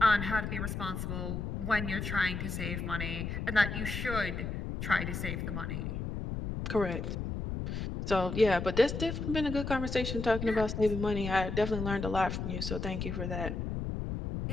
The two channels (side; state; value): left; noise; rumble, 4 dB below the sound